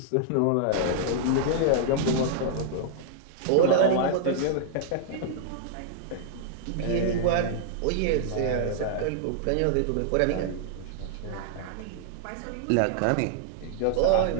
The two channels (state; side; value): different; both; correlation -0.01